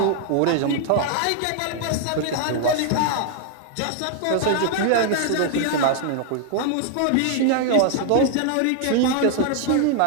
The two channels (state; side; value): different; both; correlation 0.00